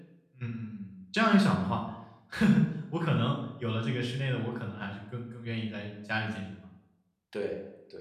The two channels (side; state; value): both; identical; correlation 1.00